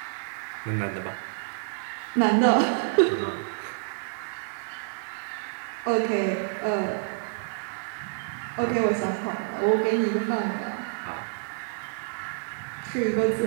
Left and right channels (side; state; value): left; silent; 56 dB below the other